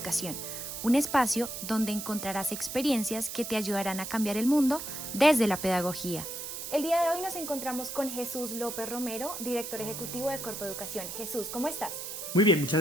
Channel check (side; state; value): right; noise; hiss, 7 dB below the sound